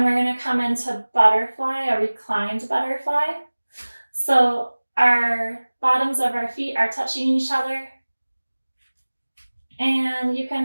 we're going to come into butterfly, a reclined butterfly. So our bottoms of our feet are touching each other. And you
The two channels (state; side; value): inverted; both; correlation -1.00